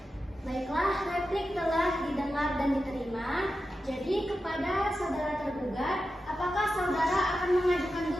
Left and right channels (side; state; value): both; normal; correlation 0.91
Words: Baiklah, replik telah didengar dan diterima. Jadi kepada saudara tergugat, apakah saudara akan mengajukan